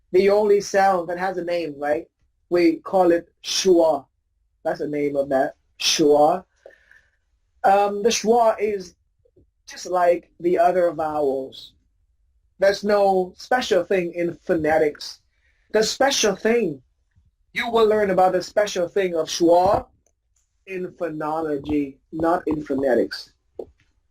The only sound that has a name, right? We call it schwa. That's the name of that, schwa. The schwa is just like the other vowels. There's no special thing in phonetics. The special thing, you will learn about the special thing of schwa in phonology, not in phonetics.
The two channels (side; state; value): both; identical; correlation 1.00